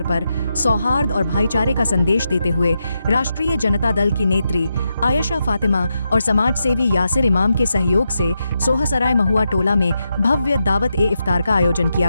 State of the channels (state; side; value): inverted; both; correlation -0.85